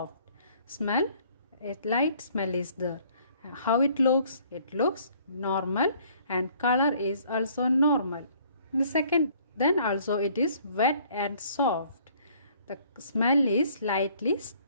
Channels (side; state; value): both; inverted; correlation -0.59